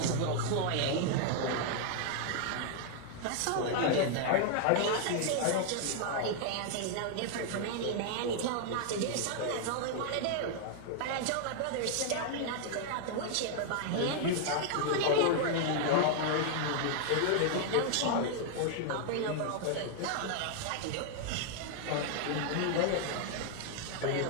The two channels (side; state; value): both; different; correlation 0.00